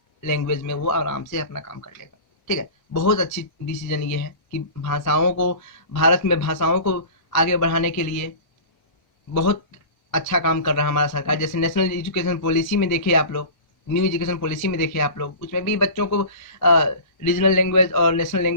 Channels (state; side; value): late; right; 1.0 ms